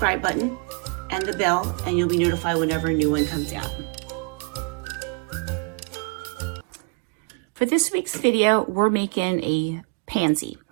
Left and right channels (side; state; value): left; quieter; 33.7 dB